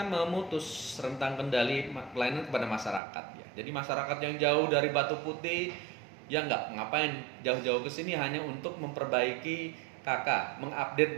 memutus rentang kendali pelayanan kepada masyarakat ya. Jadi masyarakat yang jauh dari Batu Putih ya ngapain jauh-jauh ke sini hanya untuk memperbaiki KK, mengupdate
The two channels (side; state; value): left; drops out; at 3.0 s